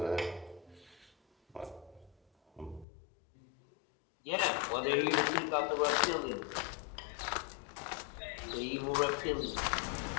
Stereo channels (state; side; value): drops out; right; at 2.9 s